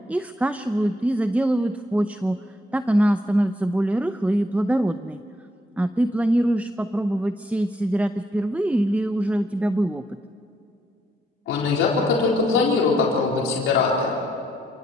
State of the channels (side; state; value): both; normal; correlation 0.73